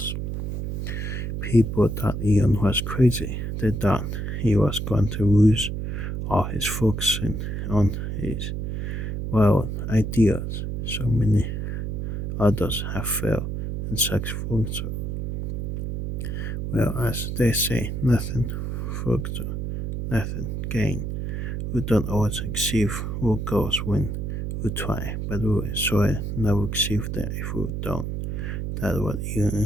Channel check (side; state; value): right; noise; hum, 3 dB below the sound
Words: People thought Elon was crazy. They thought he was going to lose all his focus on his wild ideas. So many others have failed in such ventures. Well, as they say, nothing further, nothing gain. We don't always achieve our goals when we try, but we surely never achieve them if we don't. That's what